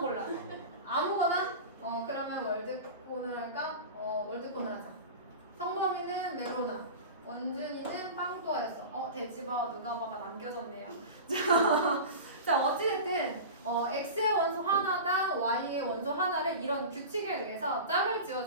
아무거나. 그러면 월드콘을 할까? 월드콘을 하자. 성범이는 메로나. 원준이는 빵또아였어. 돼지바 누가 봐가 남겨졌네요. 자, 어찌됐든 x의 원소 하나당 y의 원소 하나를 이런 규칙에 의해서 짝을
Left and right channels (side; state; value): both; inverted; correlation -0.30